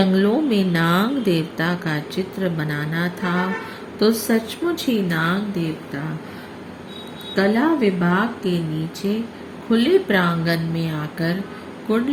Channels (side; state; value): both; identical; correlation 1.00